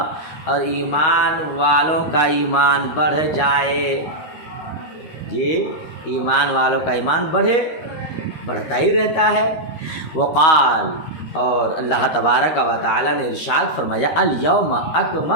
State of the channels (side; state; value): right; late; 13 ms